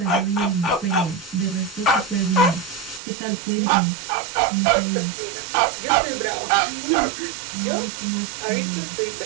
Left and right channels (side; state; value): left; drops out; at 3.0 s